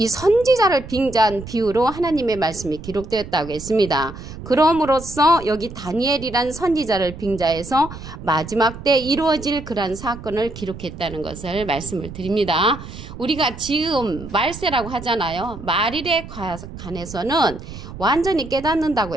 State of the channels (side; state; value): right; noise; rumble, 13 dB below the sound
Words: 선지자를 빙자한 비유로 하나님의 말씀이 기록되었다고 했습니다. 그럼으로써 여기 다니엘이란 선지자를 빙자해서 마지막 때 이루어질 그러한 사건을 기록했다는 것을 말씀을 드립니다. 우리가 지금 말세라고 하잖아요. 말일에 관해서는 완전히 깨닫는다고